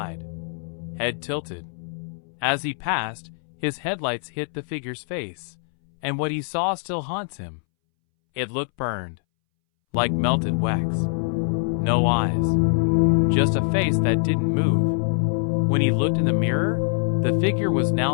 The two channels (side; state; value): right; silent; 62 dB below the other